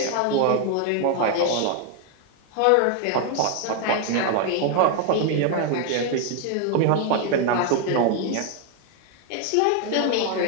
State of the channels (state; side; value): different; both; correlation 0.00